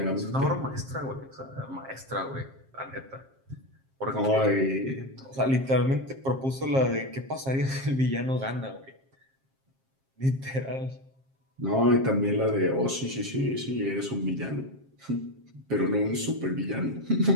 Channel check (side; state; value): left; late; 7.5 ms